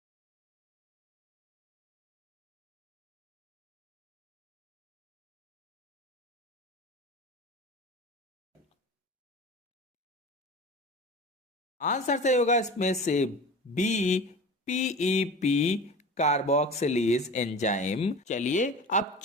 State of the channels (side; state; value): both; normal; correlation 0.35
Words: आंसर सही होगा इसमें से बी, पीईपी कार्बोक्सिलेज एंजाइम। चलिए अब